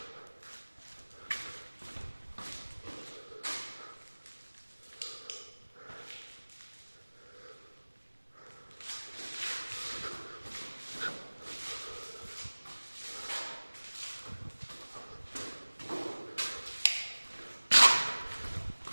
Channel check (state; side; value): inverted; both; correlation -1.00